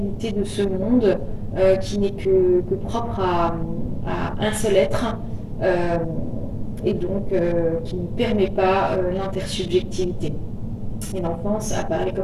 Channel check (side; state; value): both; identical; correlation 1.00